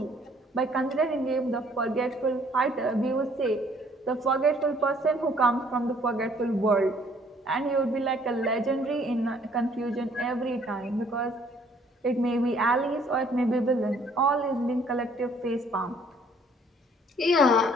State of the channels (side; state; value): both; normal; correlation 0.61